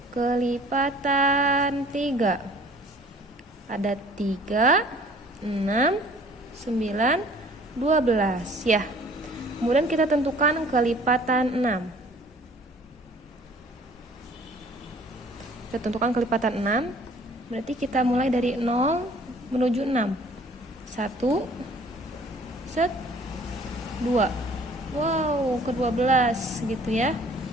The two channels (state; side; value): normal; both; correlation 0.53